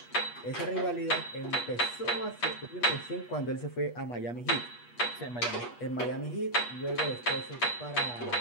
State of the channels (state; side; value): late; right; 8.3 ms